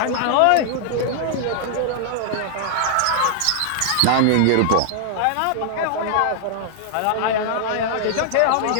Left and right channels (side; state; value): both; different; correlation -0.01